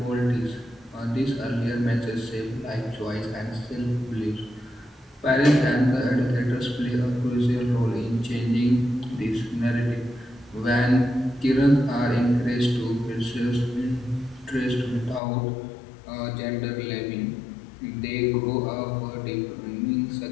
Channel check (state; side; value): drops out; right; at 15.2 s